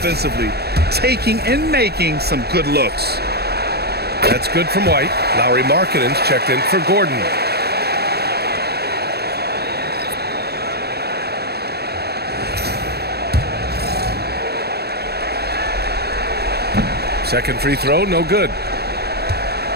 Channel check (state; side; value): late; left; 0.47 ms